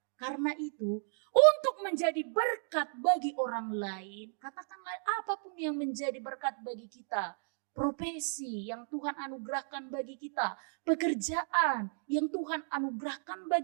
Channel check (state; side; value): silent; left; digital silence